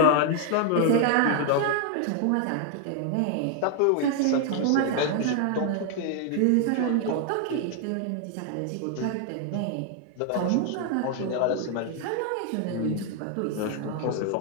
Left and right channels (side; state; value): both; different; correlation 0.00